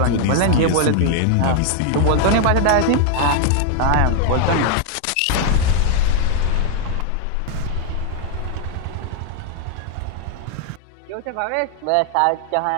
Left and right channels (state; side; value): different; both; correlation 0.00